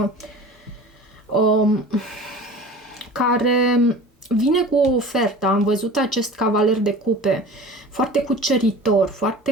care vine cu o ofertă. Am văzut acest cavaler de cupe, foarte cuceritor,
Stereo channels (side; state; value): both; normal; correlation 0.39